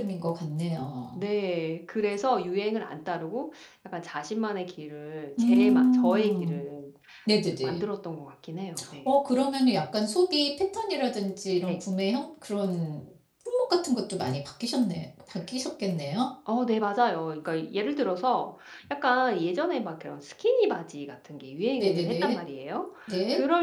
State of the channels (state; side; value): identical; both; correlation 1.00